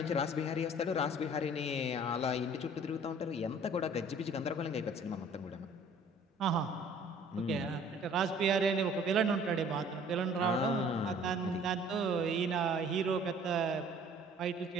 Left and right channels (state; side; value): normal; both; correlation 0.53